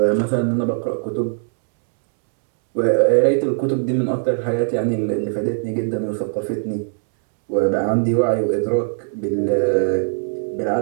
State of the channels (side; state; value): left; silent; 66 dB below the other